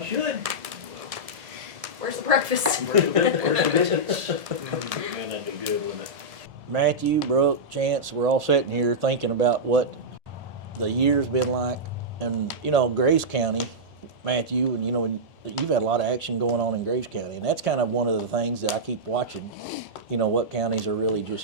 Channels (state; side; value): late; left; 1.7 ms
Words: should. Where's the breakfast? Where's the biscuits? Man, that'd be good, wouldn't it? Matthew, Brooke, Chance, we're all sitting here thinking about what the year's been like. And, you know, Graves County, Matthew, and, you know, you've had a lot of action going on in Graves County. And that's kind of one of the things that I keep watching, you know, what counties are really